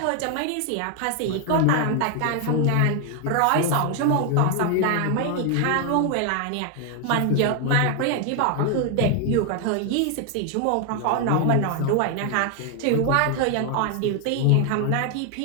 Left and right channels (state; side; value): different; both; correlation 0.00